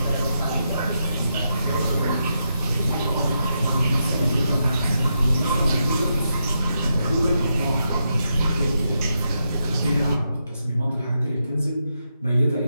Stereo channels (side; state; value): both; inverted; correlation -0.84